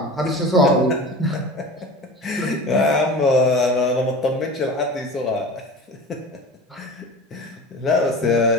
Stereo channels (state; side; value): normal; both; correlation 0.35